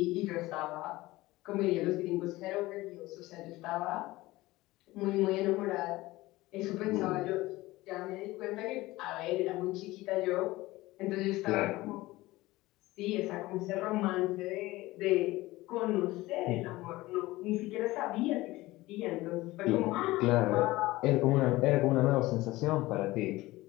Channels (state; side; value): quieter; right; 18.9 dB